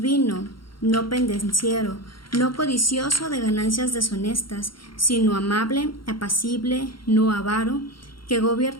no pendenciero, no codicioso de ganancias deshonestas, sino amable, apacible, no avaro, que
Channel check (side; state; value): right; late; 0.73 ms